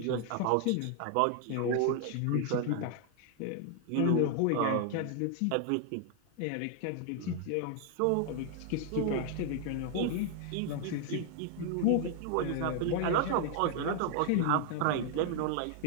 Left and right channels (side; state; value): both; different; correlation 0.00